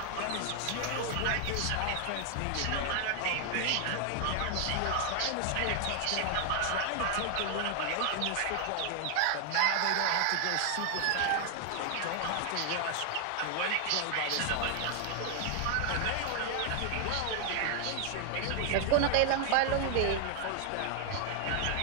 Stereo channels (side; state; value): both; different; correlation 0.00